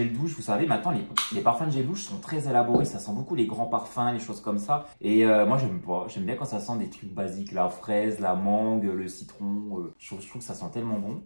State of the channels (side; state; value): both; inverted; correlation -1.00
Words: douche. Vous savez, maintenant, les parfums de gel douche sont très élaborés. Ça sent beaucoup les grands parfums, les choses comme ça. Et moi, j'aime pas. J'aime bien quand ça sent des trucs basiques. La fraise, la mangue, le citron. Je trouve que ça sent tellement bon.